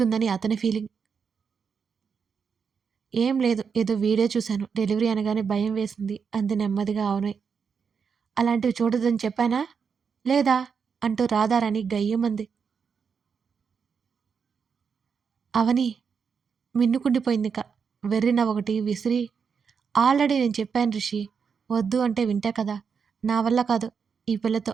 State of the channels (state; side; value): quieter; left; 6.2 dB